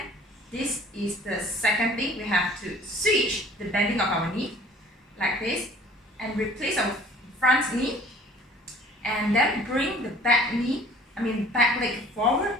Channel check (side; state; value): both; normal; correlation 0.51